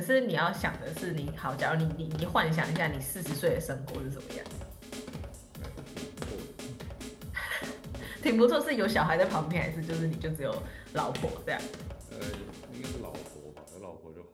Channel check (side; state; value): both; identical; correlation 1.00